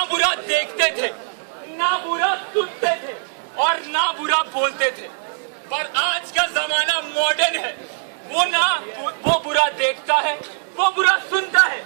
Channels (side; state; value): left; silent; 65 dB below the other